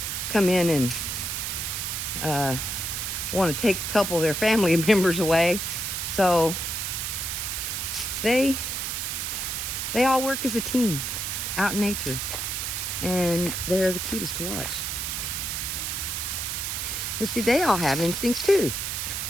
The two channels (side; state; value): right; noise; hiss, 2 dB below the sound